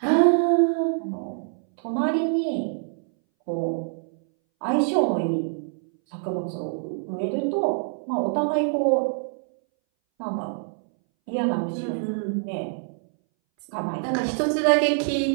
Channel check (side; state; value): left; silent; 61 dB below the other